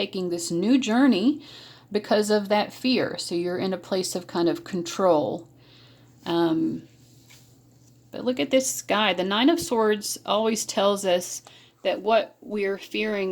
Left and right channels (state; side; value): identical; both; correlation 1.00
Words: this new journey because of that fear. So you're in a place of kind of control. But look at this guy. The Nine of Swords always tells us that what we're